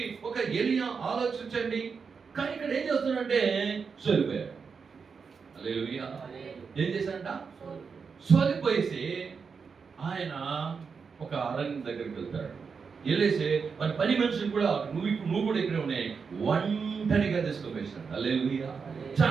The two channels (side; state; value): left; quieter; 5.6 dB